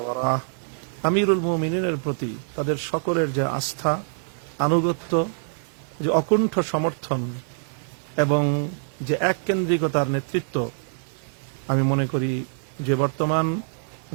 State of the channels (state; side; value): silent; left; 62 dB below the other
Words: ওয়ারাহ আমিরুল মুমিনিনের প্রতি তাদের সকলের যে আস্থা, আনুগত্য, যে অকুণ্ঠ সমর্থন এবং যে এককেন্দ্রিকতার নেতৃত্ব, আমি মনে করি যে বর্তমান